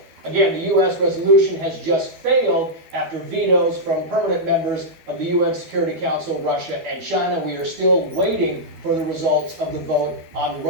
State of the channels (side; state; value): left; late; 12 ms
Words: Again, the U.S. resolution has just failed after vetoes from permanent members of the UN Security Council, Russia, and China. We are still waiting for the results of the vote on